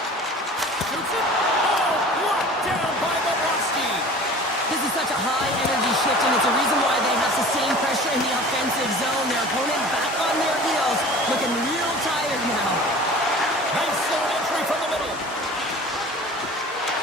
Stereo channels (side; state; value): both; normal; correlation 0.42